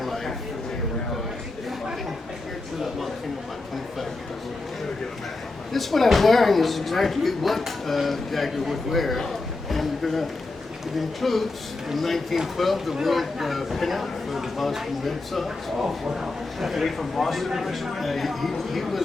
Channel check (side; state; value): right; quieter; 3.3 dB